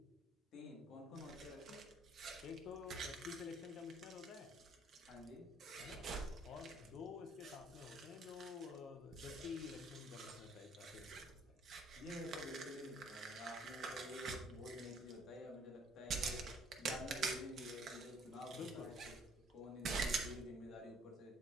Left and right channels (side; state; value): both; normal; correlation 0.60